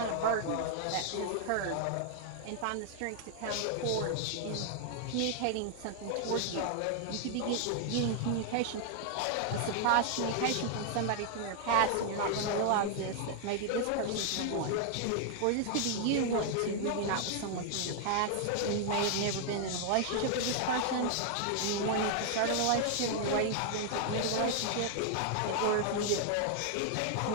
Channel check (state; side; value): different; both; correlation 0.00